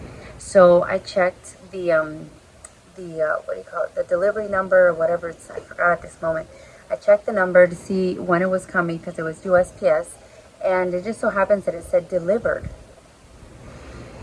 So I checked the what do you call it, the delivery number or whatever it's, I forgot at this moment. I checked the number to see when it was coming because it was USPS, and it just so happens that it said delivered,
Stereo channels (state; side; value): identical; both; correlation 1.00